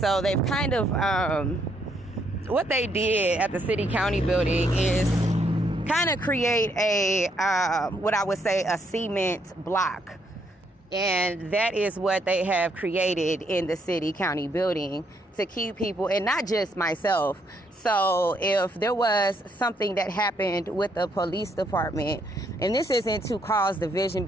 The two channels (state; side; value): normal; both; correlation 0.73